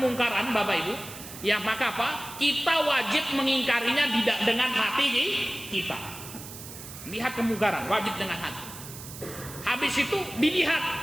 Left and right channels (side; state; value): right; noise; hiss, 13 dB below the sound